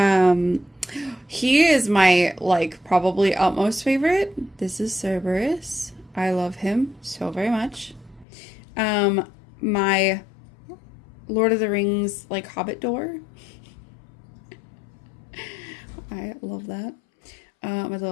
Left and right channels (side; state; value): right; drops out; at 8.2 s